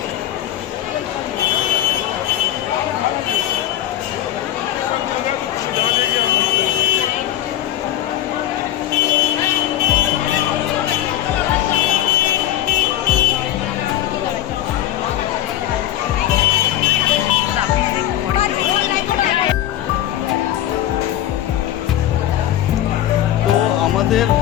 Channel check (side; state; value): right; quieter; 12.2 dB